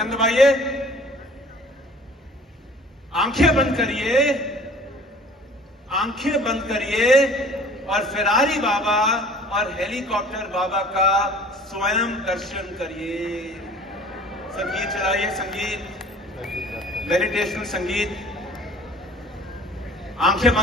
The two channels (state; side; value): normal; both; correlation 0.49